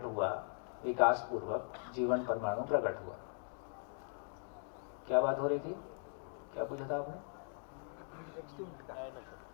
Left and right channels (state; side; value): silent; right; 51 dB below the other